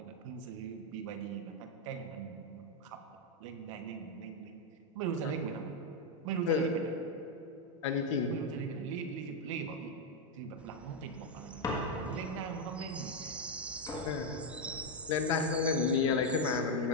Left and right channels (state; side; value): normal; both; correlation 0.03